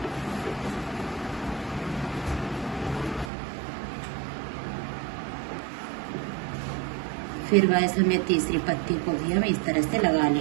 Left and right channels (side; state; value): left; drops out; at 3.3 s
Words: फिर गाइस हम ये तीसरी पत्ती को भी हम इस तरह से लगा